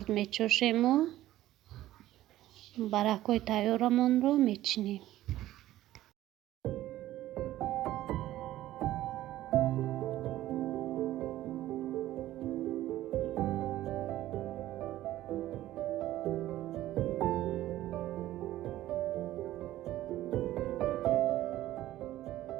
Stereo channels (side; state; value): left; quieter; 14.6 dB